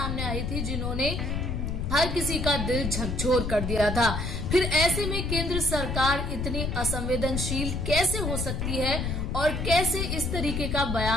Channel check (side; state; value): left; noise; rumble, 2 dB below the sound